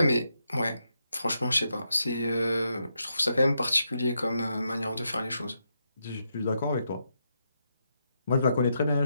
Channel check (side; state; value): both; inverted; correlation -0.82